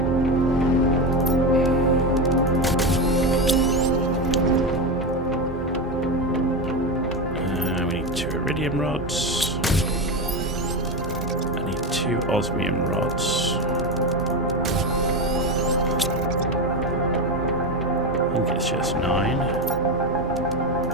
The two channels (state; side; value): noise; left; hum, 15 dB below the sound